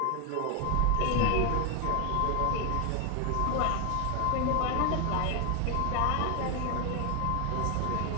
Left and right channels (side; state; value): both; different; correlation 0.00